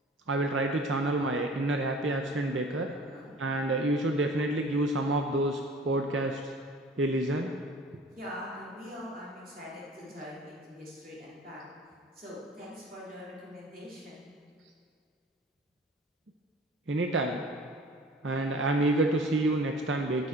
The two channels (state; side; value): normal; both; correlation 0.46